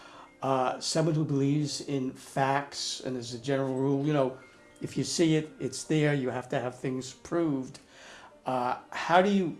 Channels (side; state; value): both; identical; correlation 1.00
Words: someone who believes in facts, and as a general rule, if you see it, it's there. You have to have things proved. How do you